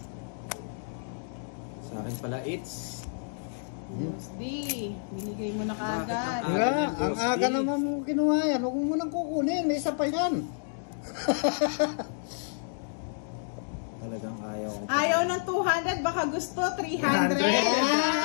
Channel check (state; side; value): silent; right; digital silence